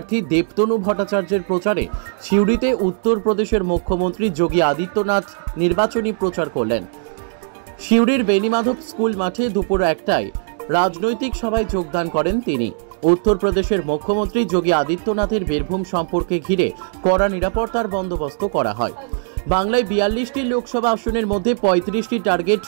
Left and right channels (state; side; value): silent; left; digital silence